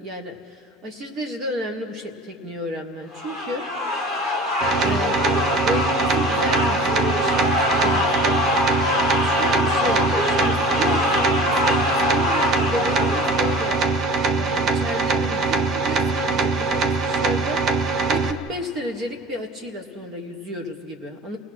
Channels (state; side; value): normal; both; correlation 0.41